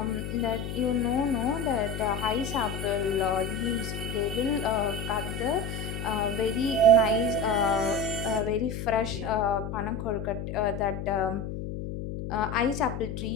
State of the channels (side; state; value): left; noise; hum, 5 dB below the sound